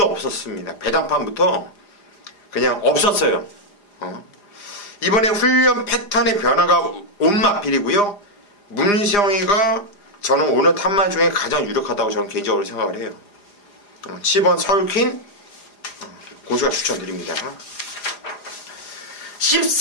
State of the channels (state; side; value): late; right; 4.9 ms